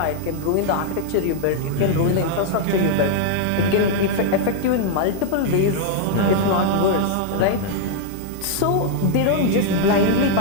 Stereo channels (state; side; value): different; both; correlation 0.00